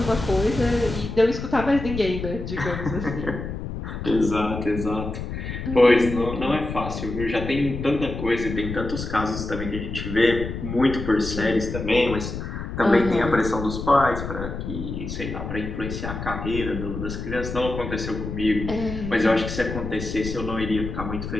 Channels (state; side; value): noise; left; rumble, 6 dB below the sound